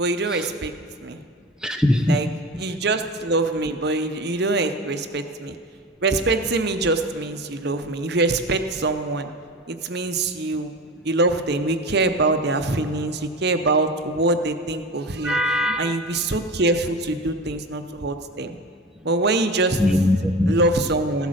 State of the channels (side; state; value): both; normal; correlation 0.31